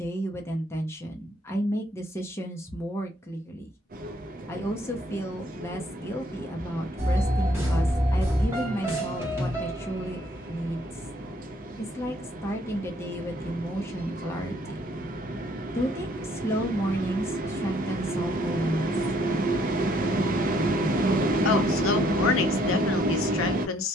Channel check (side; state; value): both; normal; correlation 0.65